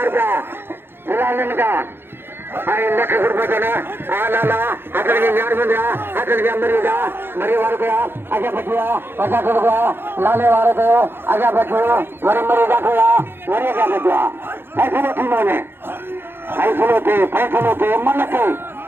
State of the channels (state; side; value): late; left; 0.10 ms